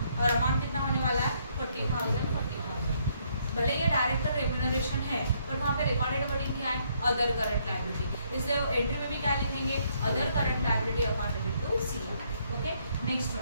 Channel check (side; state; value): both; inverted; correlation -0.70